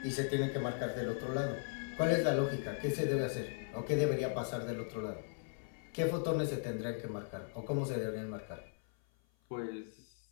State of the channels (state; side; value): silent; right; 53 dB below the other